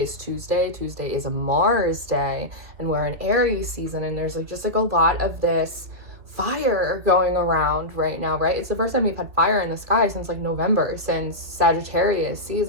Tuesday. Tuesday is a Mars day, and we're in Aries season, and there's just a lot of this fire going around right now, right? It's the first time we've had fire in the sky since November, since Sagittarius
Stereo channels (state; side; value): late; left; 2.4 ms